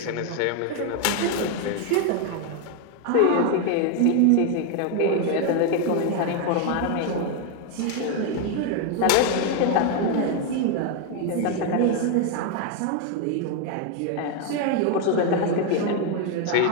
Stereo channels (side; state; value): both; different; correlation 0.01